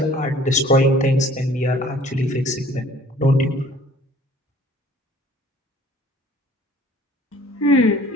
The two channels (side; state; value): both; normal; correlation 0.53